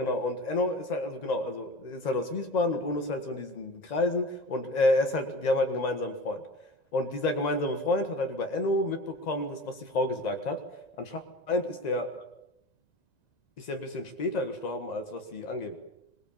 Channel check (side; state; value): right; late; 1.9 ms